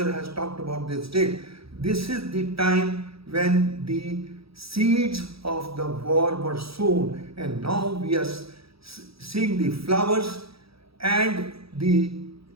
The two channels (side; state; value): left; late; 0.76 ms